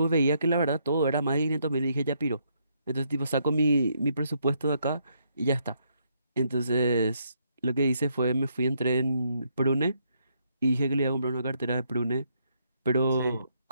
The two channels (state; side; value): inverted; both; correlation -0.74